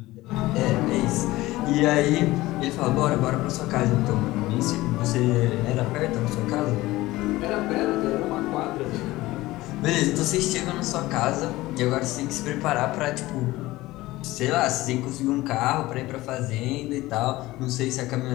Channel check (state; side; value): quieter; right; 18.3 dB